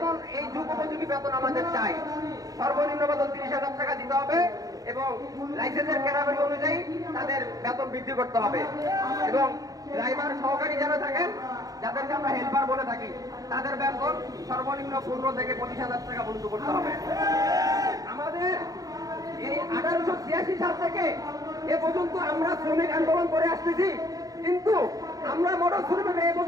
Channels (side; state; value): left; late; 0.18 ms